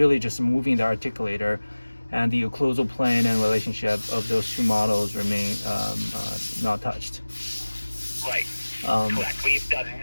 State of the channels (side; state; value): both; inverted; correlation -1.00